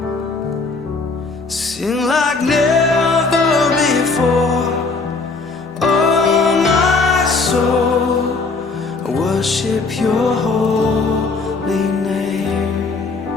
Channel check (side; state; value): right; quieter; 4.0 dB